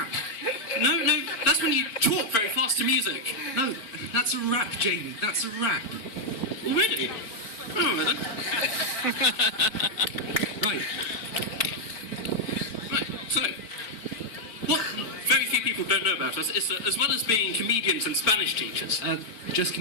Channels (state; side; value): late; right; 4.5 ms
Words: No, that's when you talk very fast to music. No, that's a rap, Jamie, that's a rap. Already? Oh, then. Right, so, what very few people don't know about us is that as well as being comedians and Spanish teachers, just